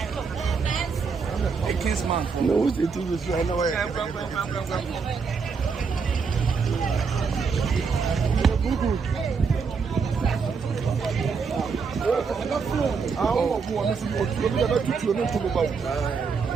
a kinsman. No, it is right away.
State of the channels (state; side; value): quieter; left; 5.4 dB